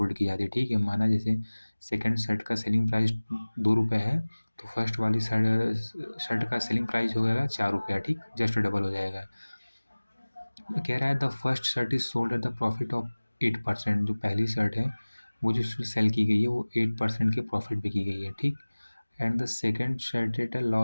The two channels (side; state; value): both; inverted; correlation -1.00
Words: की जाती है। ठीक है, माना जैसे सेकंड शर्ट का सेलिंग प्राइस 2 रुपये है तो फर्स्ट वाली शर्ट का सेलिंग प्राइस हो जाएगा 4 रुपया। ठीक, जस्ट डबल हो जाएगा। कह रहा है the first shirt is sold at the profit of 8%। जो पहली शर्ट है वो जो सेल की गई है वो 8% के प्रॉफिट पे की गई है। ठीक, and the second shirt at a